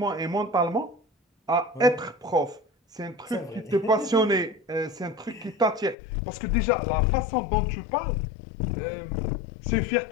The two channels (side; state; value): right; drops out; at 6.0 s